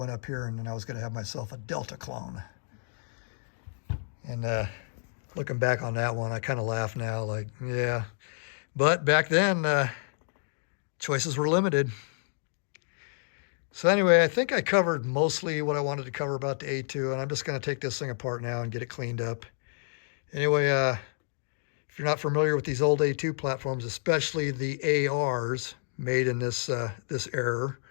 up here, and then I was going to have myself a Delta clone. And looking back on that one, I kind of laugh now, like, yeah. But back then, choices were limited. So anyway, I think I covered mostly what I wanted to cover about the A2, and I'm just going to take this thing apart now and get it cleaned up. Anyway, if you're not familiar with these old A2 platforms, especially the ARs made in this era,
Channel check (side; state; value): right; silent; digital silence